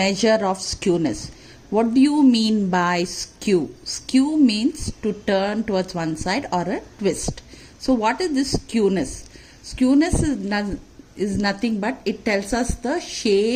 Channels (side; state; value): both; identical; correlation 1.00